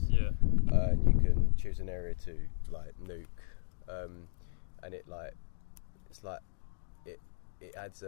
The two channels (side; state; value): right; silent; digital silence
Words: Yeah. And you can choose an area to nuke, and it adds